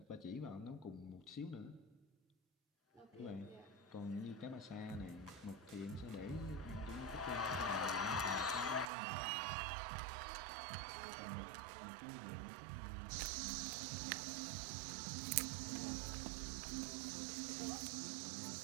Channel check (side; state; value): left; drops out; at 8.8 s